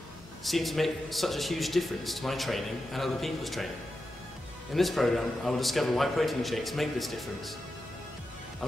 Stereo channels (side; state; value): both; normal; correlation 0.90